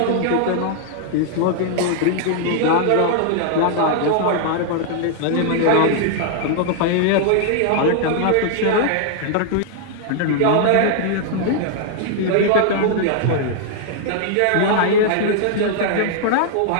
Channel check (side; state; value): both; different; correlation -0.01